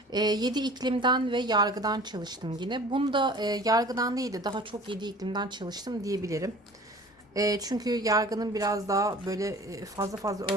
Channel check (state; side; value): normal; both; correlation 0.45